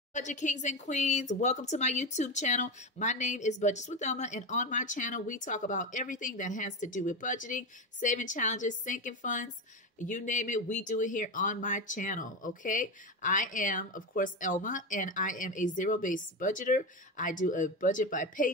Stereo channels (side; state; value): both; normal; correlation 0.17